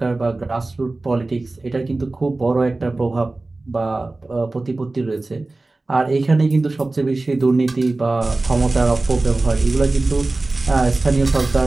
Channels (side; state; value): left; quieter; 3.1 dB